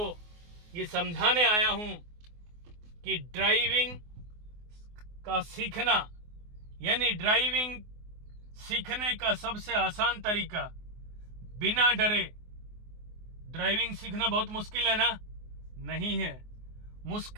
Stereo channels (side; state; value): left; late; 24 ms